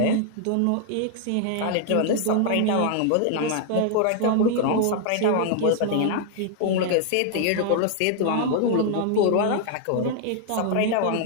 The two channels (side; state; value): both; different; correlation 0.00